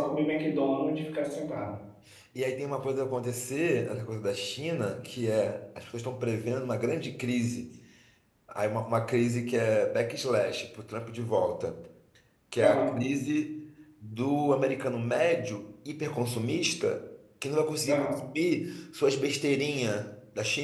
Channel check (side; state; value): both; identical; correlation 1.00